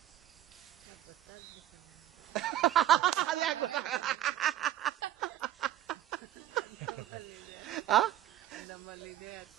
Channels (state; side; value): quieter; left; 12.7 dB